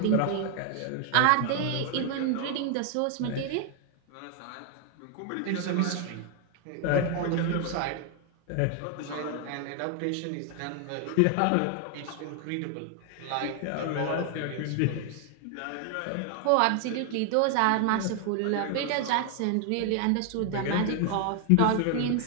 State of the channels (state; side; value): different; both; correlation 0.00